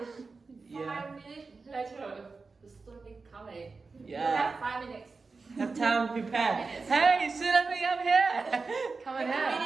Yeah. 5 minutes later, the tsunami coming. Yeah. You have 5 minutes. Have time to prepare. Hey, Tsunami, I'm here. Come on here.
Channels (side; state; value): left; quieter; 4.2 dB